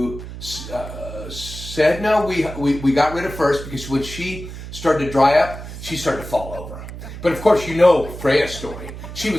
Sedna. We got rid of first because when she started to dry up, she started to fall over. But of course, you know Freyja's story. She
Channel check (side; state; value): right; noise; hum, 11 dB below the sound